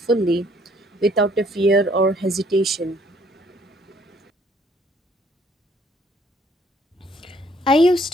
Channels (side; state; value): both; normal; correlation 0.63